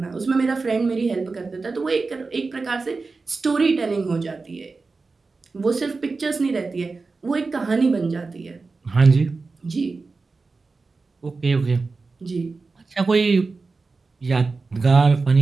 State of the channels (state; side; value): quieter; left; 4.0 dB